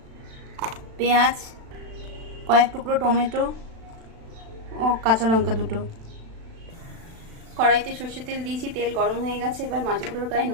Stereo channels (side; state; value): left; late; 36 ms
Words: পেঁয়াজ, কয়েক টুকরো টমেটো ও কাঁচা লঙ্কা দুটো। কড়াইতে সর্ষের তেল দিয়েছি, তেল গরম হয়ে গেছে। এবার মাছগুলোর গায়ে